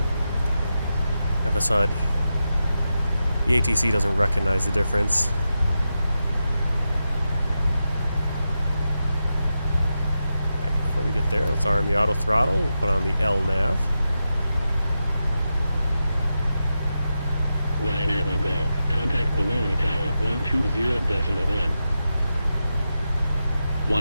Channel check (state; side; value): inverted; both; correlation -0.89